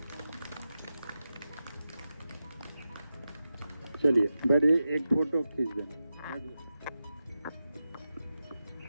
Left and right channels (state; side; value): inverted; both; correlation -0.91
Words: चलिए बड़े एक फोटो खींच देना।